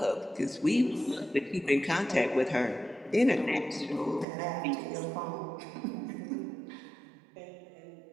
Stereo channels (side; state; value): left; drops out; at 4.2 s